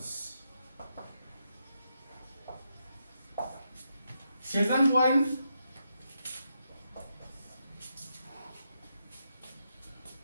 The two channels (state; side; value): inverted; both; correlation -0.83